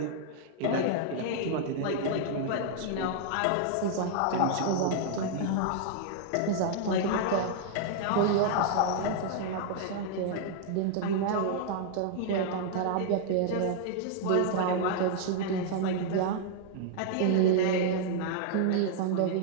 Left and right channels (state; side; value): different; both; correlation -0.01